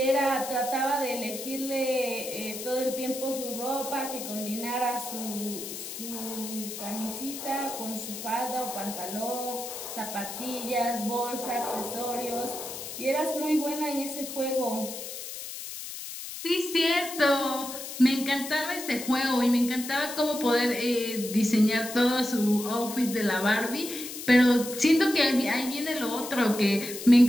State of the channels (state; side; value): noise; left; hiss, 9 dB below the sound